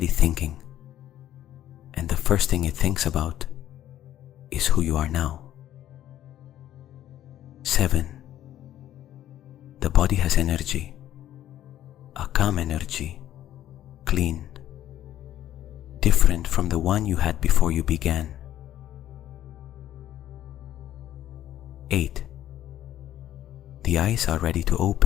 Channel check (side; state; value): right; quieter; 12.4 dB